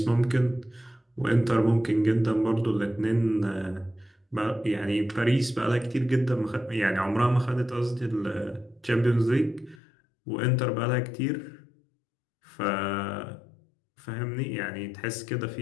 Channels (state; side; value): drops out; right; at 9.8 s